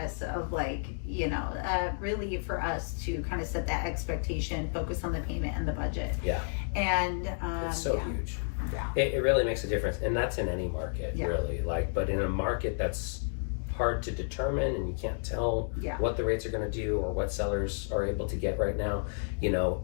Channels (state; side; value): silent; right; digital silence